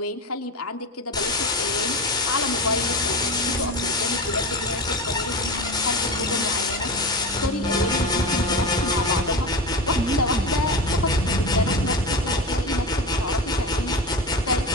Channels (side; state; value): both; normal; correlation 0.24